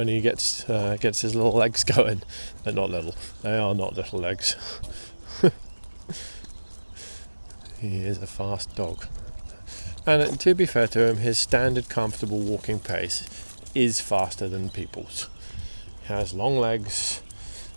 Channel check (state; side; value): inverted; both; correlation -1.00